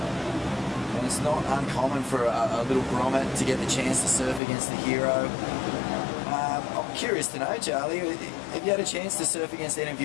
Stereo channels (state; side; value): drops out; right; at 4.4 s